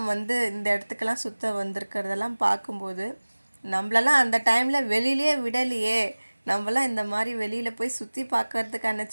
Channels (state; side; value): inverted; both; correlation -1.00